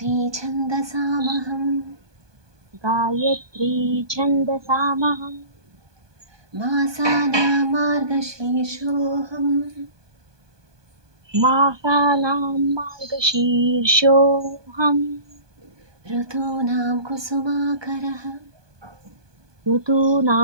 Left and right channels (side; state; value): left; late; 1.2 ms